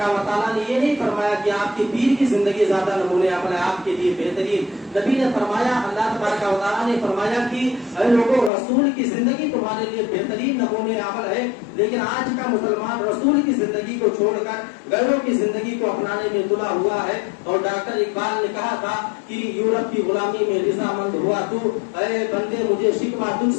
و تعالیٰ نے یہ نہیں فرمایا کہ آپ کے پیر کی زندگی زیادہ نمونہ عمل ہے, آپ کے لیے بہترین. نبی نے فرمایا, اللہ تبارک و تعالیٰ نے فرمایا کہ اے لوگوں, رسول کی زندگی تمہارے لیے بہترین نمونہ عمل ہے. لیکن آج کا مسلمان رسول کی زندگی کو چھوڑ کر غیروں کی زندگی کو اپنانے میں تلا ہوا ہے. اور ڈاکٹر اقبال نے کہا تھا کہ یورپ کی غلامی میں رضامند ہوا تو, اے بندے مجھے شکوہ تجھ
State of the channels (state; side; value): drops out; right; at 8.5 s